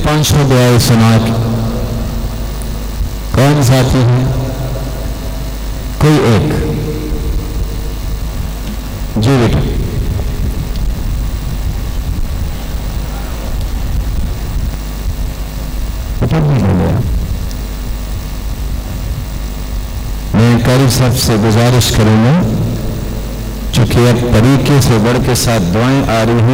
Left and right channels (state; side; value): identical; both; correlation 1.00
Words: 500 دعائیں سنا کے؟ کون ساتھی ہے؟ کوئی ایک. جی بیٹا. میں قاری صاحب سے گزارش کروں گا، چونکہ اب طریقے سے بڑھ کے 7 دعائیں آ رہی